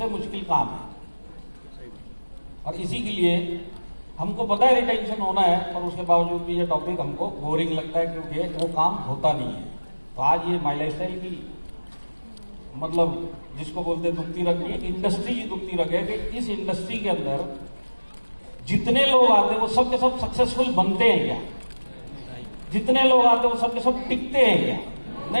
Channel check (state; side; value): inverted; both; correlation -1.00